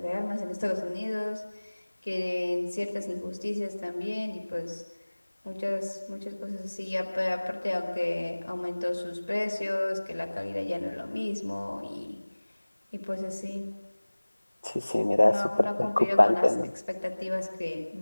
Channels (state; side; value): inverted; both; correlation -1.00